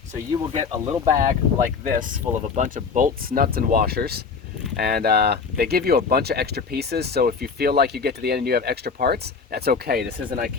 So you will get a little bag like this full of a bunch of bolts, nuts, and washers. And they give you a bunch of extra pieces, so if you feel like you get to the end and you have extra parts, that's okay. This isn't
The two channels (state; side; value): quieter; right; 5.3 dB